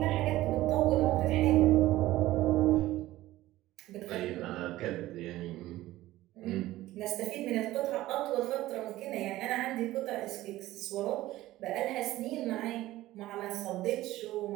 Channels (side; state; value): left; quieter; 16.2 dB